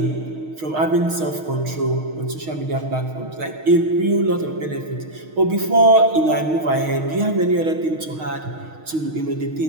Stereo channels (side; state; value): left; late; 6.4 ms